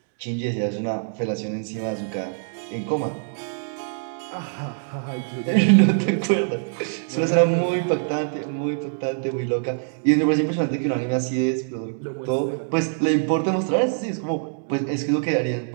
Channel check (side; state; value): left; silent; digital silence